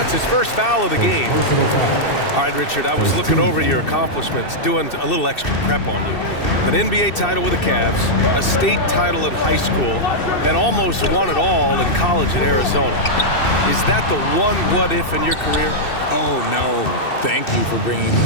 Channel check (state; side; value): late; right; 2.6 ms